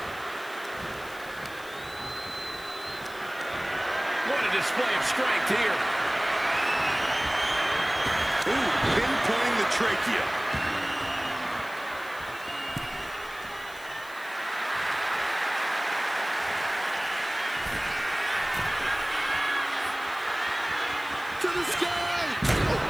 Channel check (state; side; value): noise; left; hiss, 20 dB below the sound